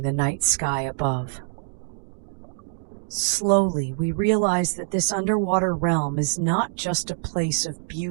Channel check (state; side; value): silent; left; digital silence